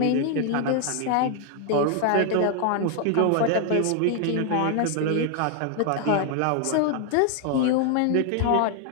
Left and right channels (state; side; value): different; both; correlation 0.00